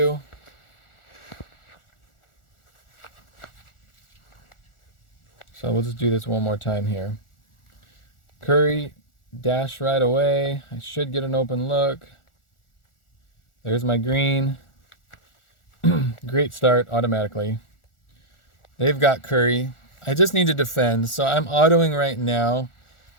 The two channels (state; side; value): late; right; 1.4 ms